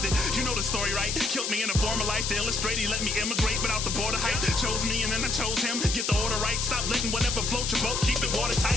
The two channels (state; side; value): noise; left; hiss, 1 dB below the sound